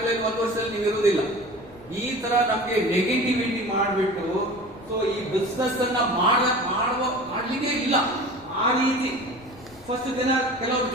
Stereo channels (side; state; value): left; noise; rumble, 24 dB below the sound